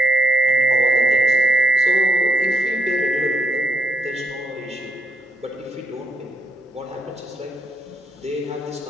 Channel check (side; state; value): both; normal; correlation 0.74